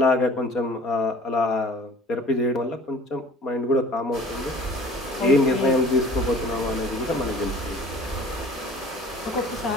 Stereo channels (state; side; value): normal; both; correlation 0.47